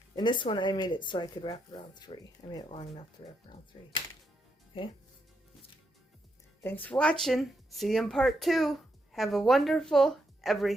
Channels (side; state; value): both; normal; correlation 0.80